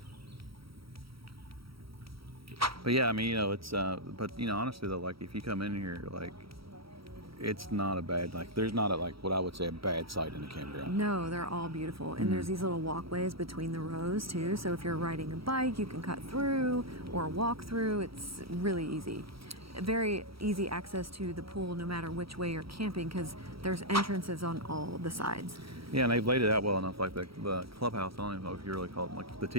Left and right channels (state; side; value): late; left; 0.75 ms